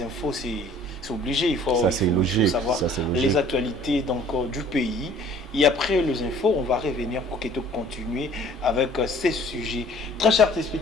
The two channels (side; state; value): both; normal; correlation 0.53